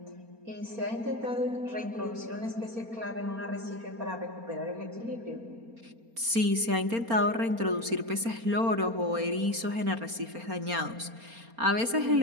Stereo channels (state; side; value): late; left; 4.3 ms